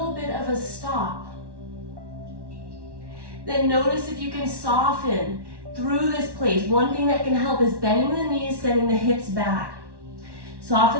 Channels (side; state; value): left; late; 1.1 ms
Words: bit of a stop. Then notice if you can soften through this place. One thing that can help is bending the knees, sending the hips back.